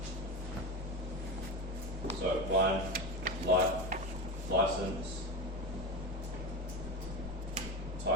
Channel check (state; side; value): normal; both; correlation 0.22